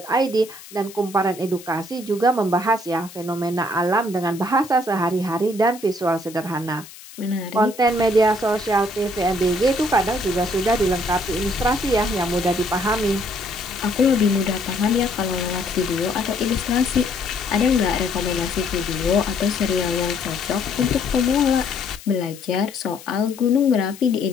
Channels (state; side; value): noise; left; hiss, 18 dB below the sound